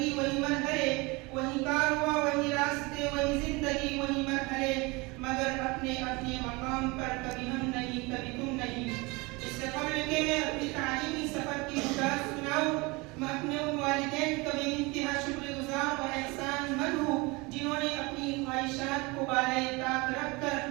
وہی مرحلے. وہی کارواں، وہی راستے، وہی زندگی، وہی مرحلے، مگر اپنے اپنے مقام پر کبھی ہم نہیں، کبھی تم نہیں. اس سے قبل کہ میں اپنی تعلیمی سفر کی گزار سناؤں، میں اپنے ان والدین کا بے انتہا شکر گزار اور احسان مند ہوں جنہوں نے اپنی خواہشات کو بالائے طاق رکھ کر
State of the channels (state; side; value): quieter; left; 25.5 dB